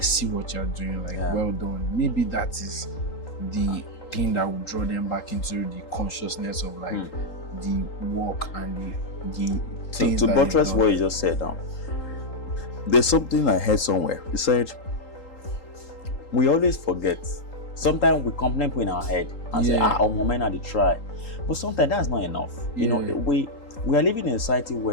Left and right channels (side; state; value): right; late; 3.8 ms